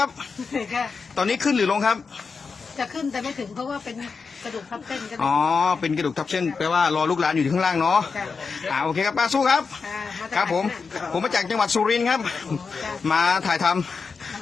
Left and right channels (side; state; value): right; quieter; 5.0 dB